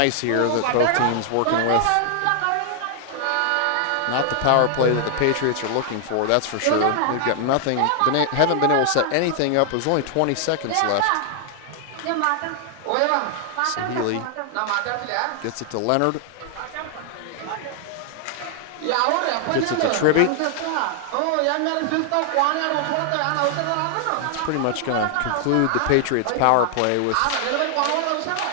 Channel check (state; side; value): different; both; correlation 0.00